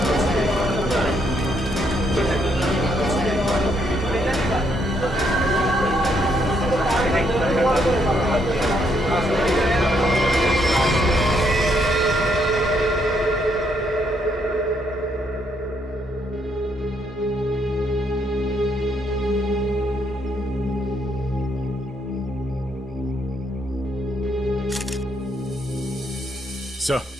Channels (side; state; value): both; normal; correlation 0.73